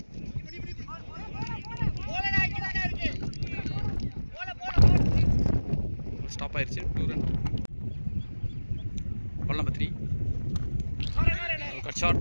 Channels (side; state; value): both; inverted; correlation -1.00